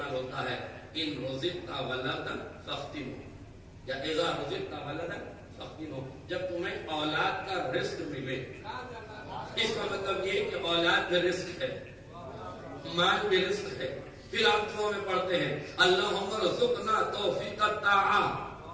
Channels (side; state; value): both; identical; correlation 1.00